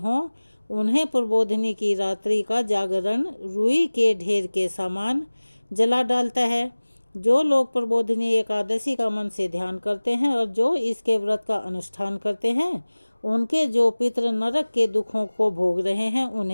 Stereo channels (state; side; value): inverted; both; correlation -1.00